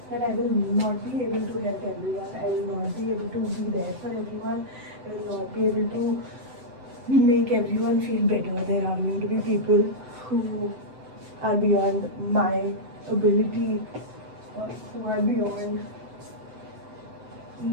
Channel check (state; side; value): late; left; 7.8 ms